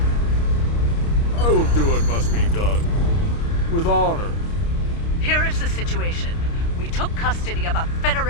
I will do what must be done. With honor. Here is the situation. We took custody of a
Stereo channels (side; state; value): right; late; 29 ms